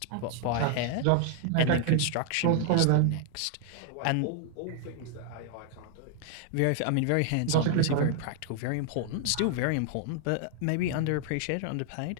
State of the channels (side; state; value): both; different; correlation 0.00